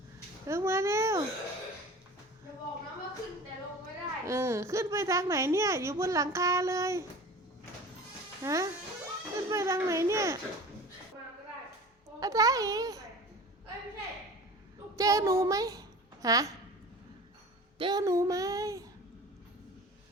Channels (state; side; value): normal; both; correlation 0.38